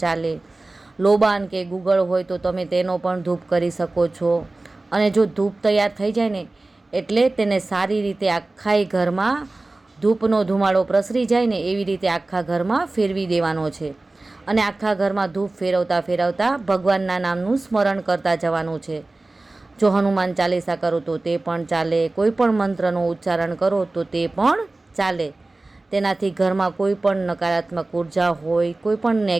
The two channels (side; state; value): left; quieter; 3.0 dB